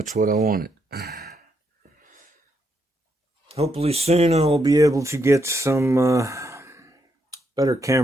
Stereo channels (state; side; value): normal; both; correlation 0.78